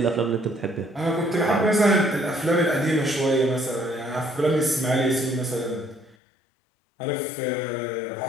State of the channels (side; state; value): right; drops out; at 6.2 s